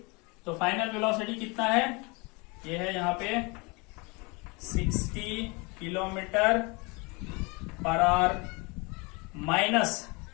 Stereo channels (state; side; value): quieter; right; 28.4 dB